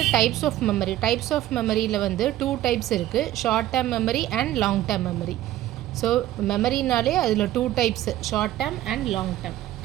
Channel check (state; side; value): quieter; left; 14.0 dB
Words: types of memory. Types of மெமரியில் வந்து 2 டைப்ஸ் இருக்குது, short term memory and long term memory. So மெமரினாலே அதில் 2 types, short term and long term.